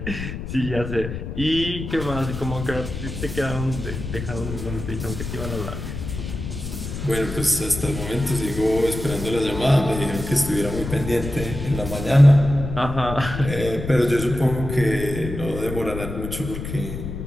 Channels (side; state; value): left; noise; rumble, 7 dB below the sound